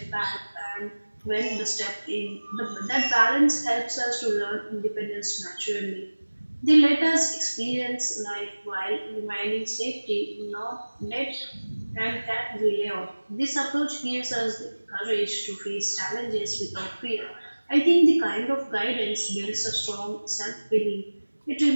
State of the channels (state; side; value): inverted; both; correlation -1.00